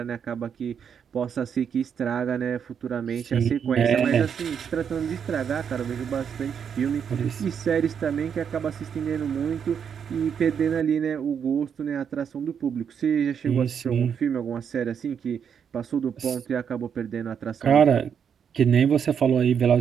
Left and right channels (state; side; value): quieter; left; 7.5 dB